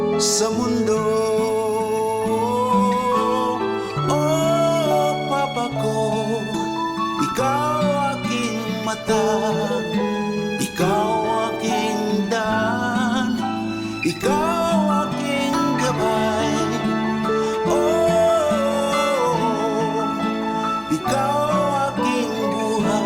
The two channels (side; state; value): both; identical; correlation 1.00